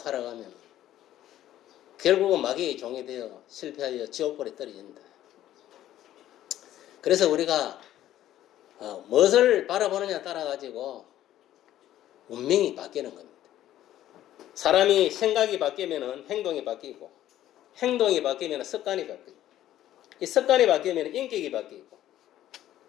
결국은 마귀의 종이 되어 실패하여 지옥불에 떨어진다. 그래서 우리가 무엇을 바라보느냐 따라 가지고 운명이 바뀌는 겁니다. 사람이 생각이 바뀌면 행동이 바뀌고, 행동이 바뀌면 습관이 바뀌고, 이 습관이 바뀌면 인격이 바뀌고,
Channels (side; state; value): right; quieter; 12.9 dB